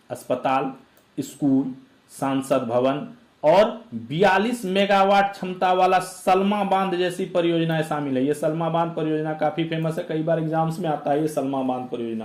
अस्पताल, स्कूल, सांसद भवन और 42 मेगावाट क्षमता वाला सलमा बांध जैसी परियोजनाएं शामिल है। ये सलमा बांध परियोजना काफी फेमस है, कई बार एग्जाम्स में आता है ये सलमा बांध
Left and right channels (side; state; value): both; identical; correlation 1.00